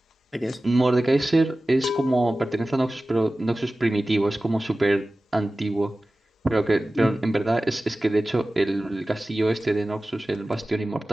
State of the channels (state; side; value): normal; both; correlation 0.96